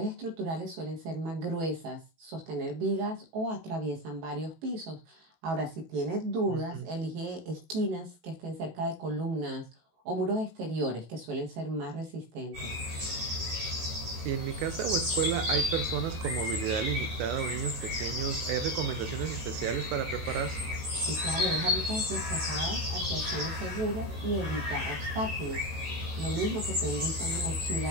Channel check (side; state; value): left; late; 18 ms